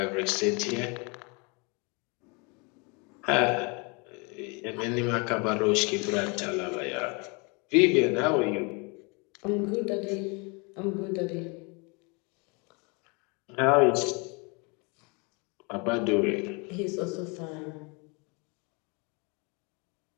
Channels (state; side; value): quieter; right; 31.0 dB